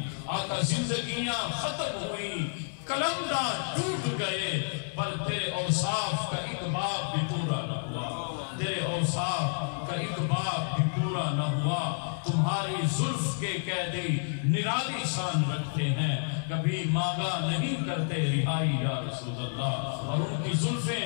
آقا زندگیاں ختم ہوئی کلمدہ ٹوٹ گئے پر تیرے اوصاف کا ایک باب بھی پورا نہ ہوا. تیرے اوصاف کا ایک باب بھی پورا نہ ہوا. تمہاری زلف کے قیدی نرالی شان رکھتے ہیں کبھی مانگا نہیں کرتے رہائی یا رسول اللہ. اور ان کی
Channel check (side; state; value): right; silent; 58 dB below the other